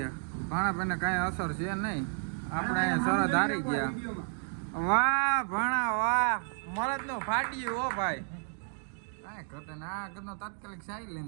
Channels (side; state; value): left; silent; 57 dB below the other